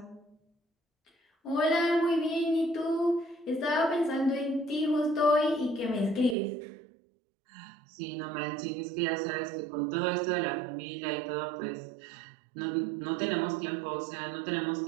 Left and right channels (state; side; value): drops out; left; at 6.4 s